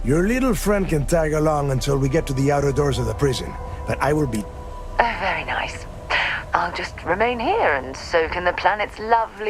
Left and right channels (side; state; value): both; identical; correlation 1.00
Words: Your little friend can tag along until we get to the outer doors of the prison, but I will be... Very nice. I'll just remain here and soak in the planet's